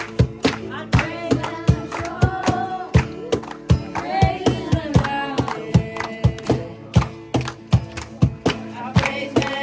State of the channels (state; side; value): identical; both; correlation 1.00